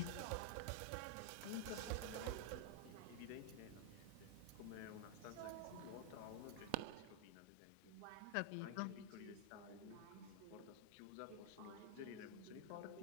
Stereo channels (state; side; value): different; both; correlation 0.00